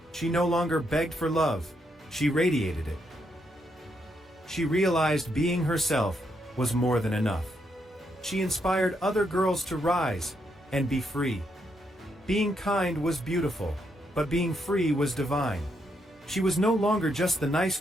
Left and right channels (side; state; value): both; normal; correlation 0.78